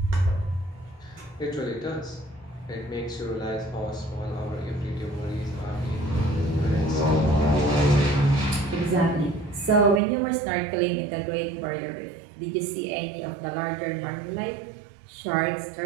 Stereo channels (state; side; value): drops out; left; at 10.0 s